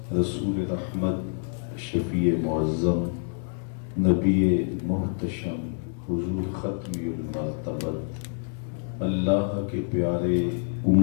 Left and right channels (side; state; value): right; silent; 60 dB below the other